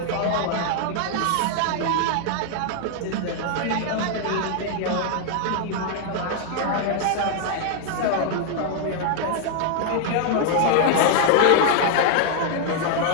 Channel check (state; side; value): different; both; correlation 0.00